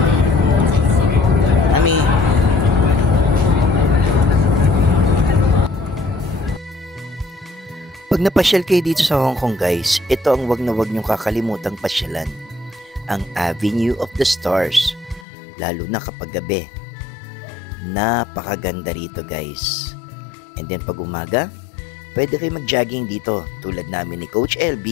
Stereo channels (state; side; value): drops out; right; at 15.2 s